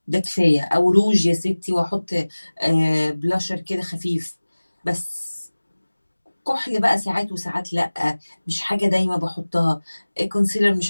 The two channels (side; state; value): both; inverted; correlation -1.00